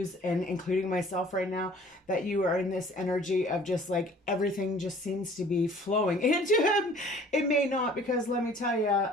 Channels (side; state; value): both; normal; correlation 0.51